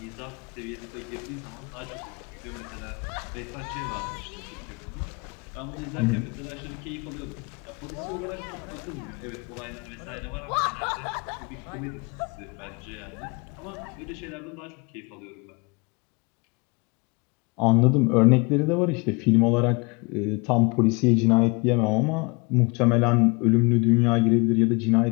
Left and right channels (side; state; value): right; quieter; 29.2 dB